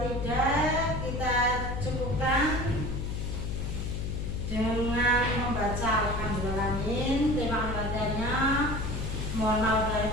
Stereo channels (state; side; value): noise; left; hum, 3 dB below the sound